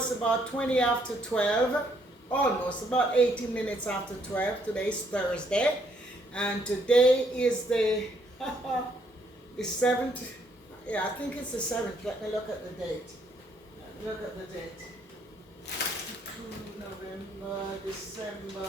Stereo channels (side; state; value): both; normal; correlation 0.69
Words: about 20 after 12, almost about 18 minutes after 12. Today's Thursday, and today is the the 7th. Yeah, I think it's the 7th. Let me look at the date. Look at the date. November, December,